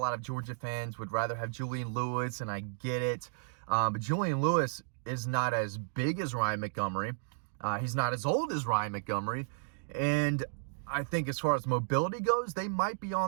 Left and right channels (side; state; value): left; silent; digital silence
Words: of Georgia fans would rather have Julian Lewis, and I get it. But Julian Lewis is not as big as Ryan Montgomery. He's not as old as Ryan Montgomery. And I think as far as mobility goes, they might be